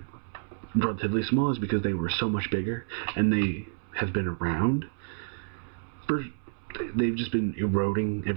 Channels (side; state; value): left; silent; 59 dB below the other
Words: relatively small, is because they were so much bigger, and they have been around? They've just been eroding